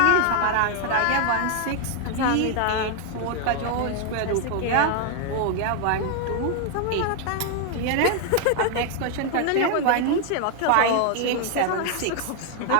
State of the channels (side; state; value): both; different; correlation 0.00